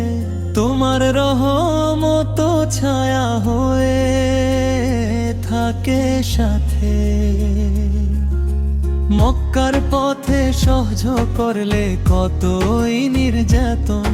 তোমার রহমত ছায়া হয়ে থাকে সাথে। মক্কার পথে সহ্য করলে কতই নির্যাতন,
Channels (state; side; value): identical; both; correlation 1.00